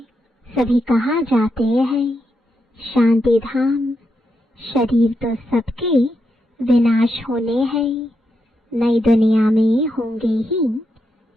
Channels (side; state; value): both; normal; correlation 0.84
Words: सभी कहाँ जाते हैं? शांति धाम। शरीर तो सबके विनाश होने हैं, नई दुनिया में होंगे ही